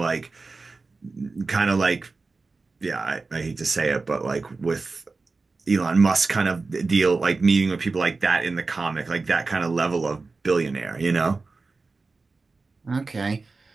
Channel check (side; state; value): left; quieter; 3.9 dB